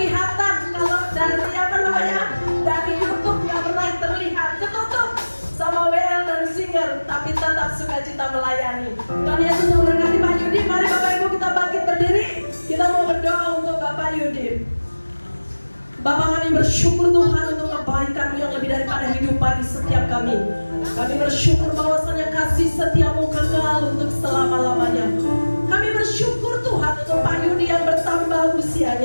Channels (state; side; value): inverted; both; correlation -1.00